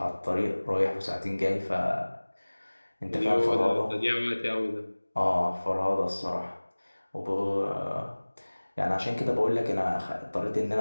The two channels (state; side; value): inverted; both; correlation -1.00